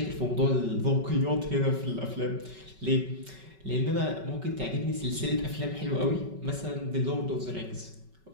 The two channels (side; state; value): left; late; 5.3 ms